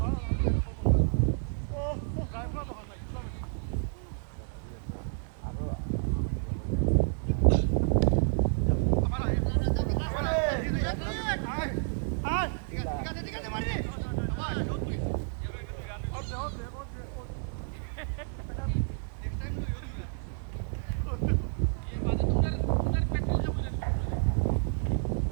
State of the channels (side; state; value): left; silent; 58 dB below the other